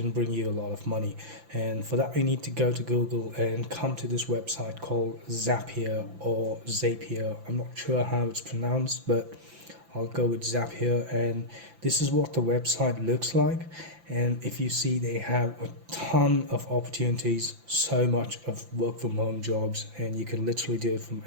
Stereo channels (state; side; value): late; left; 5.9 ms